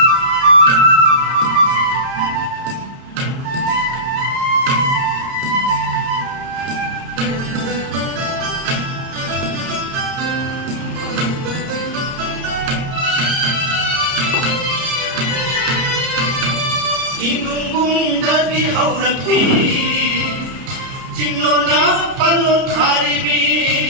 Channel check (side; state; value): left; late; 30 ms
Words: Inumbung dagi haurapi Jinglo na palon haribi